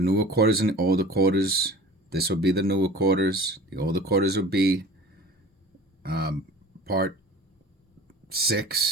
quarters and the older quarters. This will be the newer quarters. The older quarters will be part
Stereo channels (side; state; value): both; normal; correlation 0.42